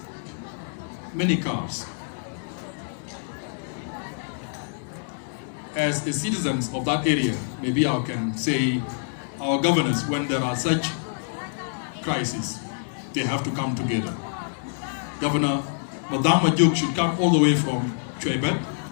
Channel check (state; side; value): silent; right; digital silence